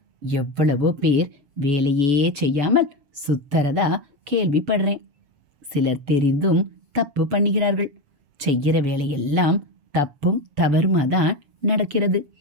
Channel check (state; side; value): late; left; 6.9 ms